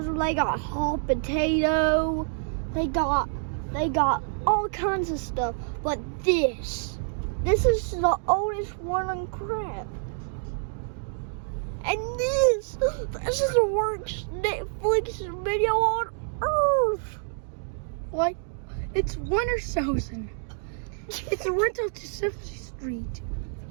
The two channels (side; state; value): left; silent; digital silence